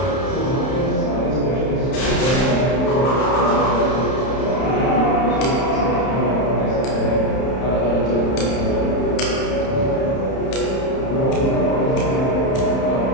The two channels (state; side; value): late; right; 31 ms